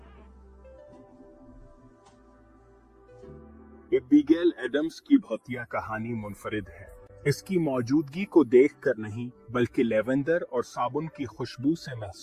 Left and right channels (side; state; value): both; identical; correlation 1.00